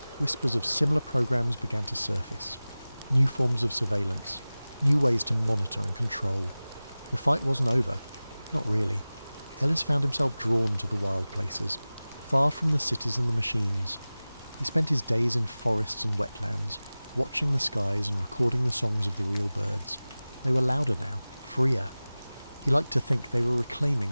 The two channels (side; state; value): both; inverted; correlation -0.98